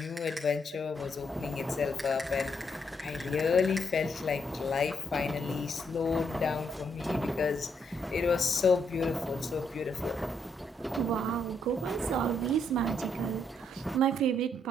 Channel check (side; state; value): both; normal; correlation 0.75